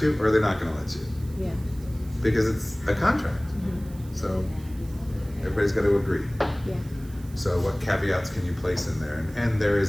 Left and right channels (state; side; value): noise; right; hiss, 24 dB below the sound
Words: you, or are they not going to let you? Yeah. Because it's a contract. Mm-hmm. So everybody's got to agree. Yeah. So what caveats can you place in there? And there